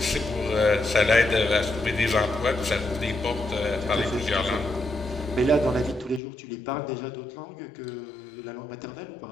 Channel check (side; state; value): right; drops out; at 6.2 s